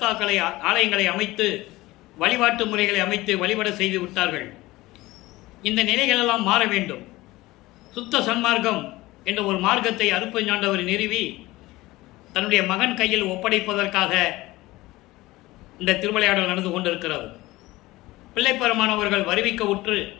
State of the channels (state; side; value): quieter; right; 19.1 dB